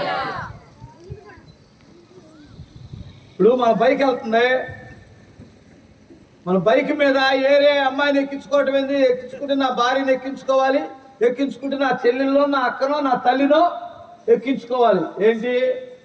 ఇప్పుడు మన బైక్ వెళ్తుంది, మన బైక్ మీద ఏరే అమ్మాయిని ఎక్కించుకోవటం ఏంది? ఎక్కించుకుంటే నా భార్యని ఎక్కించుకోవాలి, ఎక్కించుకుంటే నా చెల్లెల్లో, నా అక్కనో, నా తల్లినో ఎక్కించుకోవాలి. ఏంటి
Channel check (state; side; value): identical; both; correlation 1.00